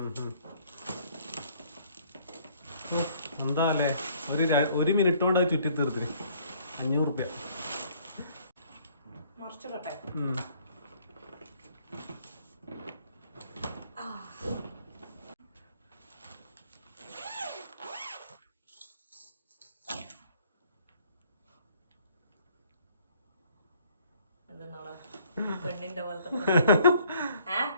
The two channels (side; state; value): both; inverted; correlation -0.61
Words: എന്താ അല്ലേ, ഒരു മിനിറ്റ് കൊണ്ട് ചുറ്റി തീർത്തിന് 500 റുപ്യ. പെണ്ണിന്റെ പോലത്തെ